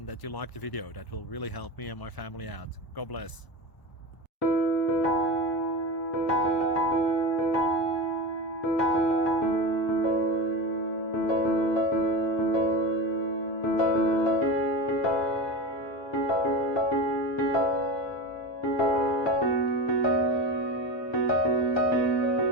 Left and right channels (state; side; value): late; right; 1.0 ms